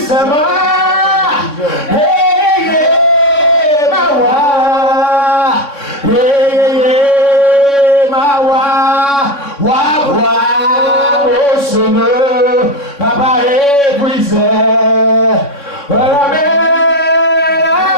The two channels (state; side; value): late; right; 3.6 ms